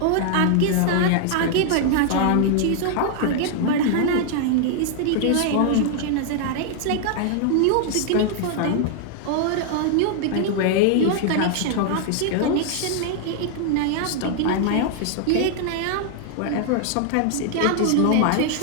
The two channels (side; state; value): both; different; correlation 0.00